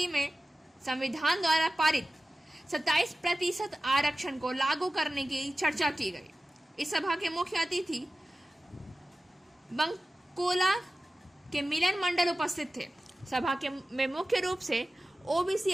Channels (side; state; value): both; normal; correlation 0.95